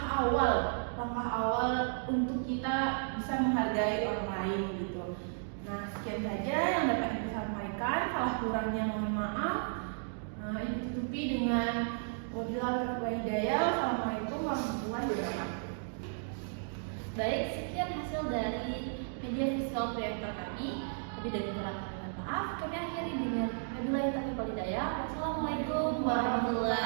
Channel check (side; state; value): left; silent; digital silence